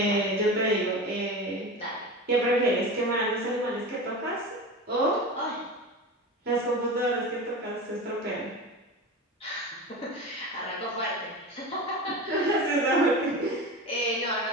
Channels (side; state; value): both; normal; correlation 0.28